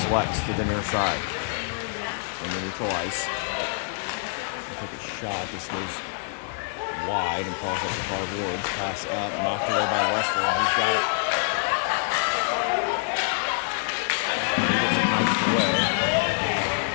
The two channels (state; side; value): silent; right; 60 dB below the other